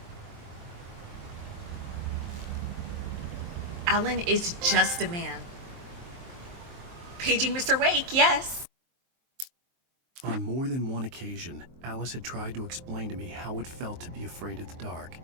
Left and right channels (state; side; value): late; left; 23 ms